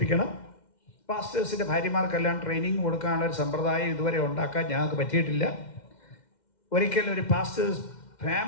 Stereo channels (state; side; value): late; right; 2.1 ms